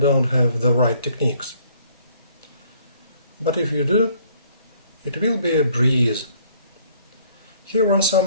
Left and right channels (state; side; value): inverted; both; correlation -0.61